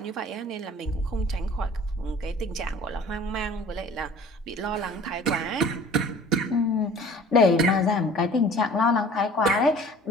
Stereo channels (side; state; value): both; normal; correlation 0.48